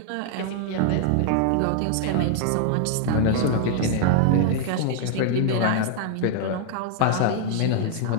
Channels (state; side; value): different; both; correlation 0.00